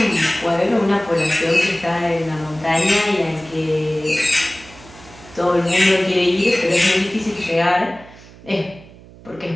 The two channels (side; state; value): right; noise; hum, 21 dB below the sound